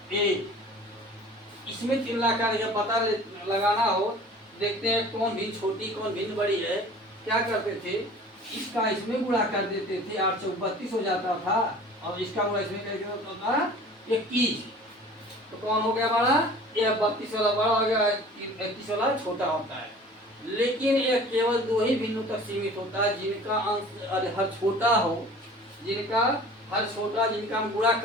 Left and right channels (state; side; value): normal; both; correlation 0.45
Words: इसमें तुलना करके पता लगाना हो, देखते हैं कौन भिन्न छोटी कौन भिन्न बड़ी है। क्या करते थे, इसका इसमें गुणा कर देते थे, 8 से 32 हो जाता था, और इसका गुणा इसमें करके होता था 21। तो कौन हो गया हमारा, यह 32 वाला बड़ा हो गया, 31 वाला छोटा होता है। लेकिन यह केवल दो ही भिन्नों तक सीमित होता है, जिनका अंश हर छोटा हो, जिनका हर छोटा, जिनका हम गुणा